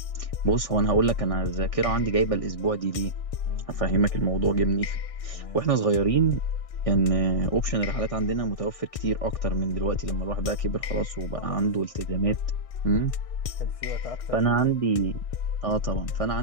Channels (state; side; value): late; right; 1.6 ms